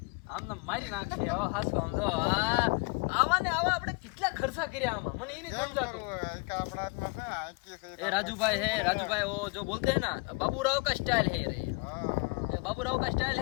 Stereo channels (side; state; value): right; quieter; 30.6 dB